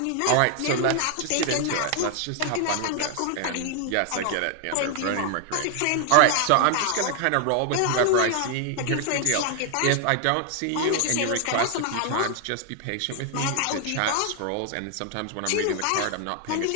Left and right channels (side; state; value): both; different; correlation 0.00